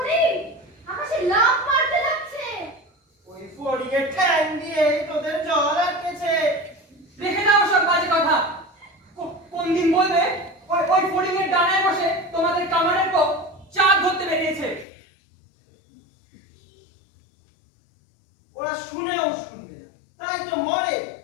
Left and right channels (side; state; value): right; drops out; at 14.9 s